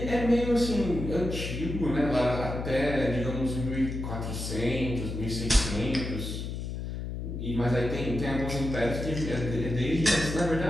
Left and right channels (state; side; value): noise; left; hum, 5 dB below the sound